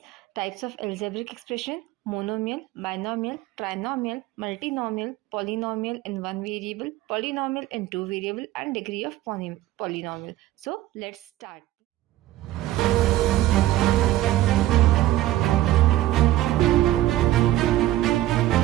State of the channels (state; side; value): quieter; left; 15.1 dB